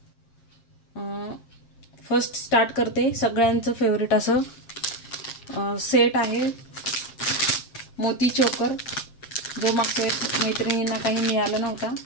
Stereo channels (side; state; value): right; late; 7.5 ms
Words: फर्स्ट स्टार्ट करते. सगळ्यांचं फेवरेट असं सेट आहे मोती चोकर, जो मागच्या मैत्रिणींना काही मिळालं नव्हता,